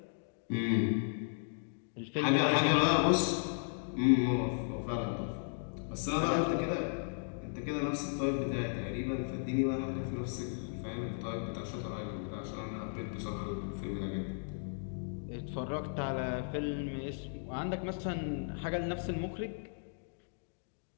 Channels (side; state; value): right; silent; digital silence